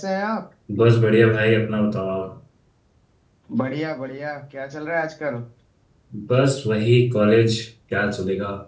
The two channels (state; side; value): identical; both; correlation 1.00